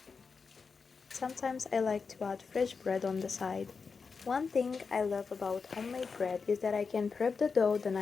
Sometimes I like to add fresh bread on the side. One thing I love about homemade bread is that I can prep the dough the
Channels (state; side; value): quieter; right; 5.1 dB